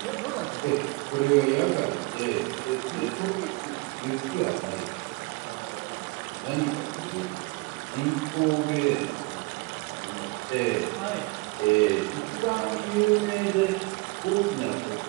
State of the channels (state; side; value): quieter; left; 25.3 dB